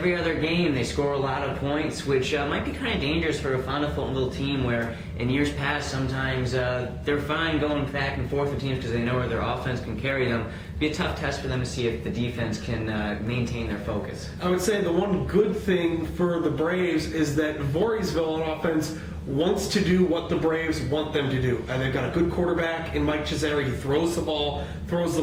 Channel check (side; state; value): both; identical; correlation 1.00